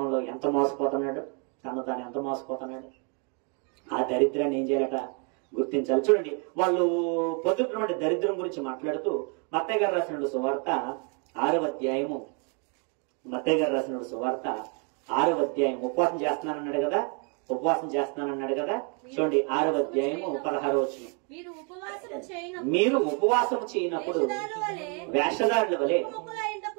ఎంత మోసపోతున్నాడు, తాను ఎంత మోసపోతున్నాడు. ఆ దరిద్రాన్ని ఏం చేయాలట గుర్తించాలి. చూడండి, వాళ్ళు పొందుతున్నటువంటి దరిద్రం గురించి మాట్లాడుతూ మత్తయి గారు రాసిన సువార్త 6వ అధ్యాయము, మత్తయి గారు రాసిన సువార్త 6వ అధ్యాయం, ఉపవాసం చేస్తున్నానన్నాడు కదా, చూడండి 6వ అధ్యాయము 16వ వచనం. మీరు ఉపవాసం చేయనప్పుడు వేషధారుల వలె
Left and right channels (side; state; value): left; quieter; 37.2 dB